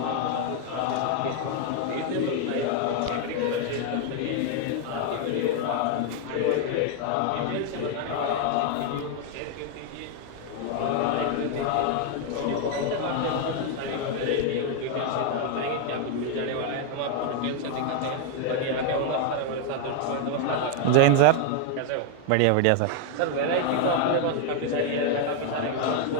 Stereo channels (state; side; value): different; both; correlation 0.00